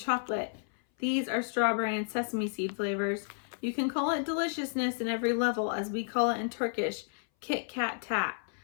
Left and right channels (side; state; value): right; silent; 57 dB below the other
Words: These are strawberry and sesame seed flavors. You can call it deliciousness in every level, as we call it in Turkish, Kit Kat Tat.